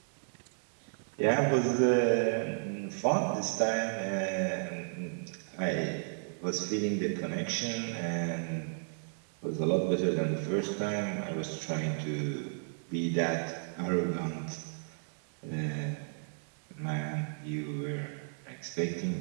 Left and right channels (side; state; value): left; silent; digital silence